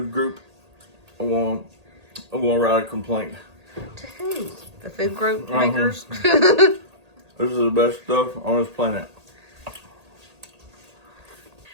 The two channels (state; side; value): late; left; 1.8 ms